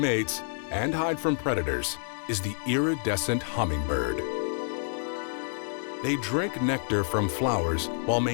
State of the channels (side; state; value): right; silent; 59 dB below the other